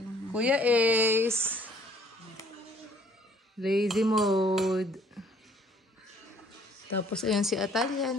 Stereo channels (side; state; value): both; normal; correlation 0.59